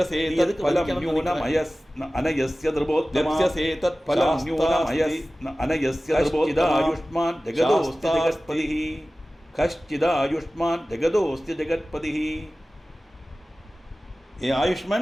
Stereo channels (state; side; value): normal; both; correlation 0.97